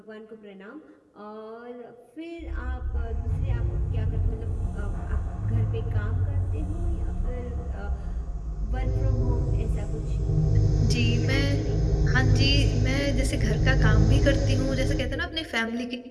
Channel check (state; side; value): identical; both; correlation 1.00